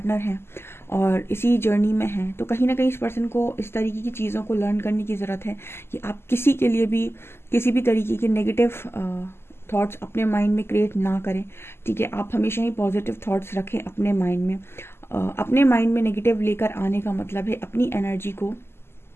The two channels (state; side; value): late; right; 0.12 ms